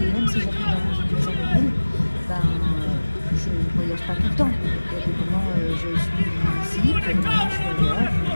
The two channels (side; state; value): both; inverted; correlation -1.00